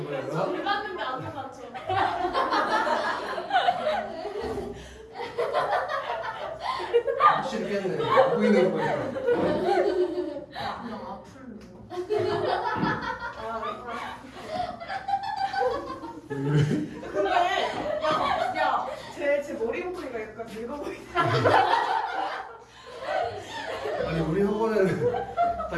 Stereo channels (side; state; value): both; identical; correlation 1.00